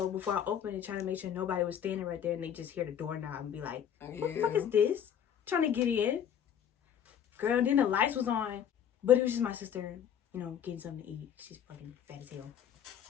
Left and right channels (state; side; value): quieter; right; 9.0 dB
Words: before I opened it, trying to make sure nobody was standing right there, and they just hear the doorknob and be like, "What the fuck is this?" Trying to get in. Girl, then the lights was on. But it was just my sister, you know, getting something to eat. She's fucking fat as hell.